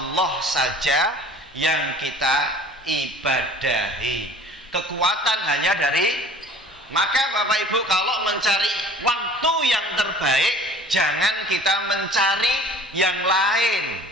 saja yang kita ibadahi. Kekuatan hanya dari, maka Bapak Ibu kalau mencari waktu yang terbaik, jangan kita mencari yang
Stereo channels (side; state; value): both; normal; correlation 0.47